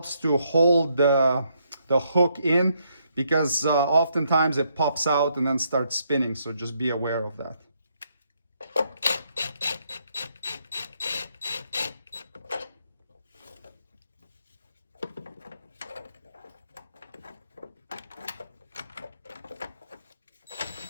to hold the hook in, because oftentimes it pops out and then starts spinning. So just be aware of that.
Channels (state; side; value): inverted; both; correlation -0.74